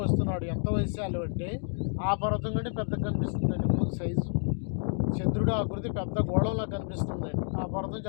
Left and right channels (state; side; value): silent; right; 58 dB below the other